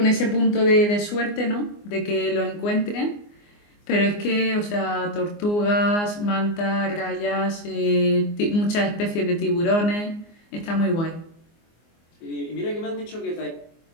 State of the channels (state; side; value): late; right; 24 ms